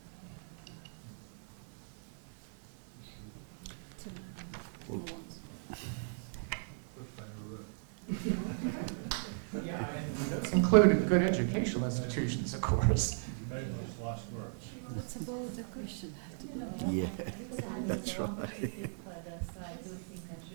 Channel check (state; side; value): silent; left; digital silence